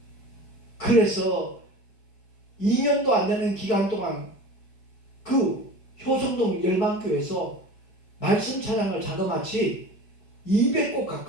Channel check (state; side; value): late; right; 4.7 ms